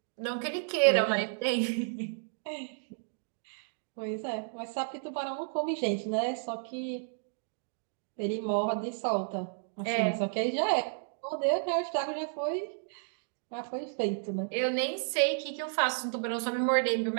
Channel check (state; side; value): silent; left; digital silence